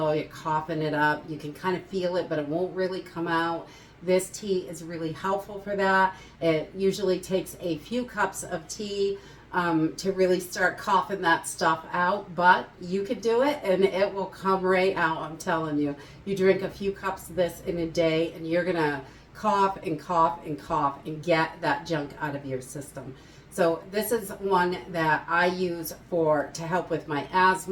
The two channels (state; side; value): identical; both; correlation 1.00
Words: you're coughing it up, you can kind of feel it, but it won't really come out. This tea is really helpful for that. It usually takes a few cups of tea to really start coughing that stuff out, but you could do it and it will come right out, I'm telling you. You drink a few cups of this in a day and you're gonna cough and cough and cough and get that junk out of your system. So this is one that I use to help with my